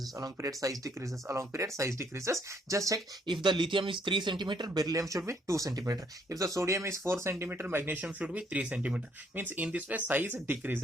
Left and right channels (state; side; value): normal; both; correlation 0.69